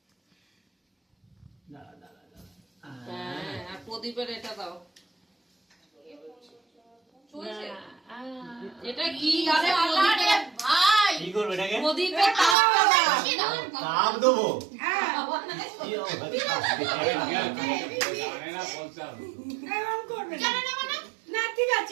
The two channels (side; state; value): left; drops out; at 12.6 s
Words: হ্যাঁ, আর প্রদীপের এটা দাও। চলছে। এটা কি? আরে প্রদীপের ভাই। কি করবে এটাকে? প্রদীপের তাপটা দাও। তাপ দেবো? হ্যাঁ। কি হবে? জানে না বলতে হবে। এরকম করবে না। জানো না মানে? না ঠিক